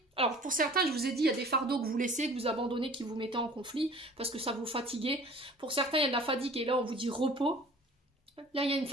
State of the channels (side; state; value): both; normal; correlation 0.47